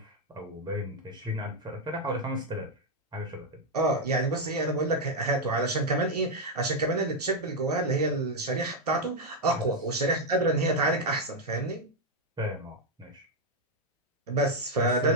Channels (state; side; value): normal; both; correlation 0.01